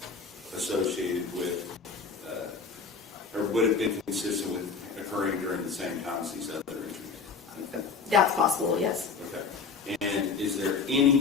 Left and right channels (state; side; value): quieter; right; 5.1 dB